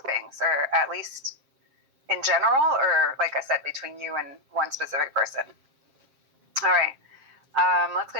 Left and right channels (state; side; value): late; left; 7.5 ms